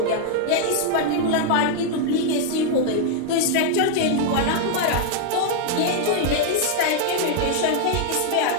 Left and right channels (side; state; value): both; different; correlation -0.01